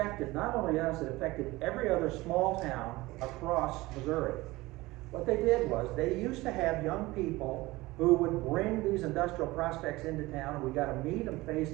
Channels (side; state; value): left; quieter; 20.1 dB